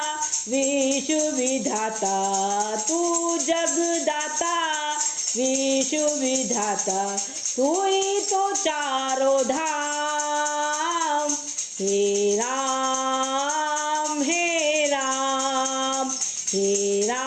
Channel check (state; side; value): identical; both; correlation 1.00